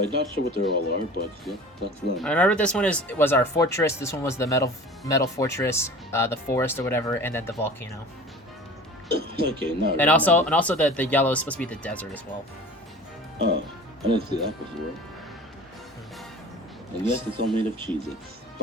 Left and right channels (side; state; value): both; normal; correlation 0.40